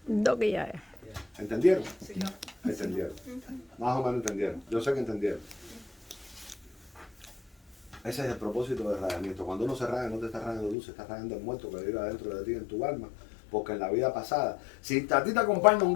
Doki ya es. ¿Entendieron? Sí. ¿Entendieron? Más o menos entendieron. Yo sé que entendieron. Ese es el propósito del rayamiento. Cuando uno se raya, no te está rayando tú, se está rayando el muerto que vive adentro de ti, en tu alma. Porque en la vida pasada, si a ti te acompaña un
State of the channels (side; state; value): right; drops out; at 10.8 s